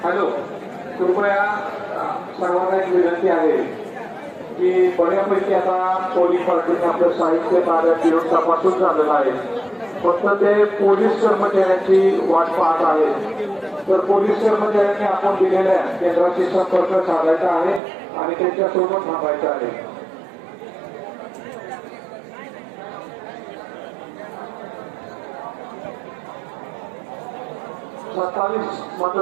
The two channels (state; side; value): drops out; left; at 17.8 s